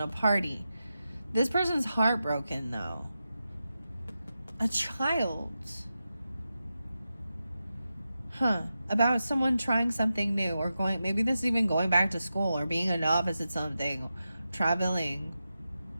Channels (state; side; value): inverted; both; correlation -0.90